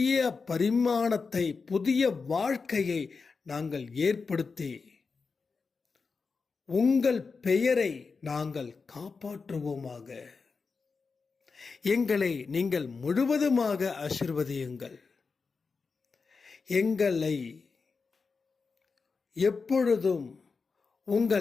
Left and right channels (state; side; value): quieter; right; 4.7 dB